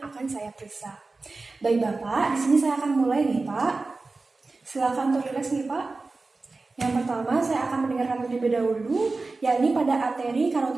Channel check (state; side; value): quieter; left; 3.6 dB